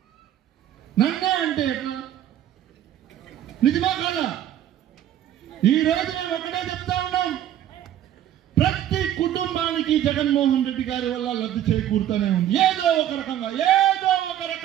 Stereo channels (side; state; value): left; quieter; 11.5 dB